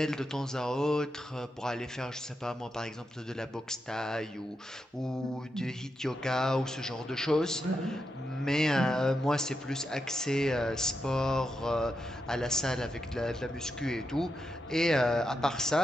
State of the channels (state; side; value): normal; both; correlation 0.86